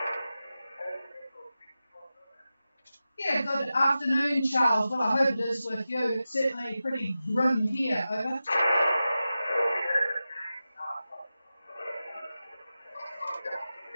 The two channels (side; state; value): both; inverted; correlation -0.93